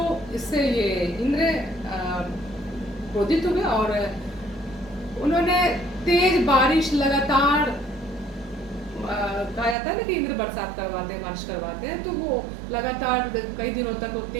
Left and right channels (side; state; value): left; drops out; at 9.8 s